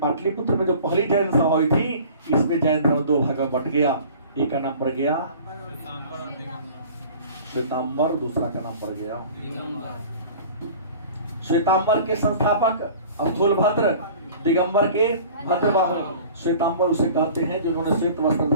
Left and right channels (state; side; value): inverted; both; correlation -0.44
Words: में जो पहली जैन सभा हुई थी, इसमें जैन धर्म 2 भाग में बट गया। एक का नाम पड़ गया श्वेतांबर, दूसरा का नाम पड़ गया श्वेतांबर के संस्थापक स्थूलभद्र, दिगंबर के भद्रबाहु। श्वेतांबर उसे कहते हैं जिन्होंने श्वेत वस्त्र